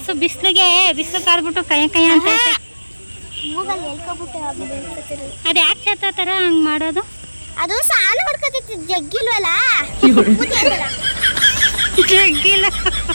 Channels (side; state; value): both; inverted; correlation -1.00